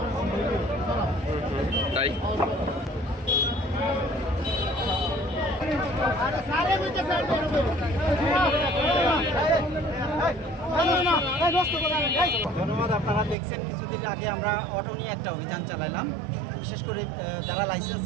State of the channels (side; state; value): left; drops out; at 13.4 s